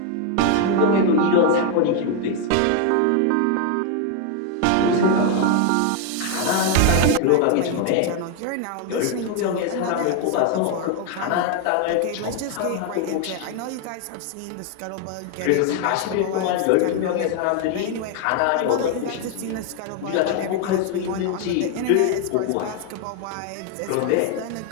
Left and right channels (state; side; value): different; both; correlation 0.01